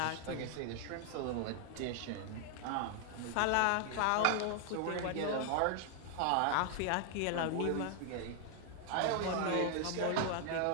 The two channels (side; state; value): both; different; correlation 0.00